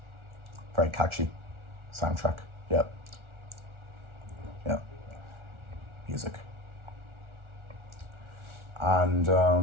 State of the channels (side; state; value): left; late; 1.4 ms